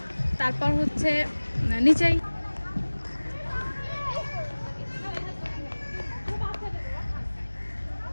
তারপর হচ্ছে নিচেই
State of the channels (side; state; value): both; inverted; correlation -1.00